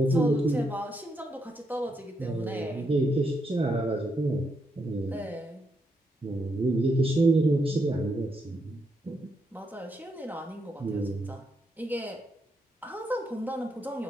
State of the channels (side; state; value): both; normal; correlation 0.80